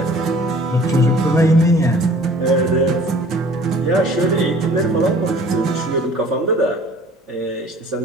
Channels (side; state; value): both; normal; correlation 0.50